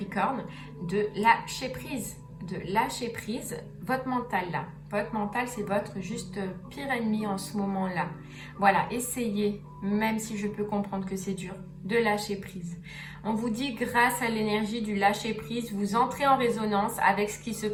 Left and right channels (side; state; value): both; identical; correlation 1.00